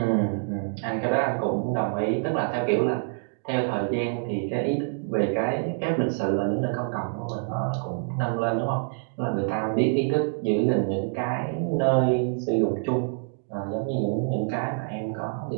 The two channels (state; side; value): silent; left; digital silence